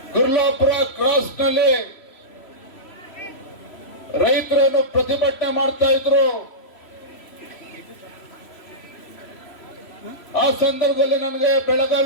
ಗುರ್ಲಾಪುರ ಕ್ರಾಸ್ನಲ್ಲಿ ರೈತರನ್ನು ಪ್ರತಿಭಟನೆ ಮಾಡ್ತಾ ಇದ್ರು. ಆ ಸಂದರ್ಭದಲ್ಲಿ ನನಗೆ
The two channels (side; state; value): right; late; 3.0 ms